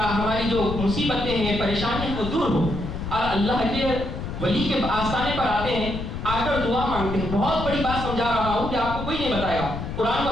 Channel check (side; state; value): left; noise; rumble, 6 dB below the sound